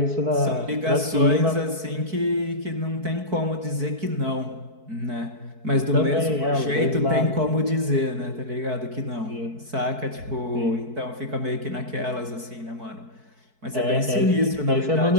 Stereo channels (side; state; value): left; late; 4.6 ms